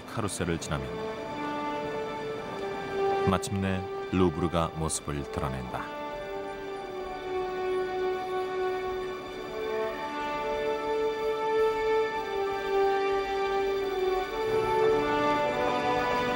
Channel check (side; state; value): both; identical; correlation 1.00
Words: 카루셀을 지나면 마침내 루브르가 모습을 드러낸다.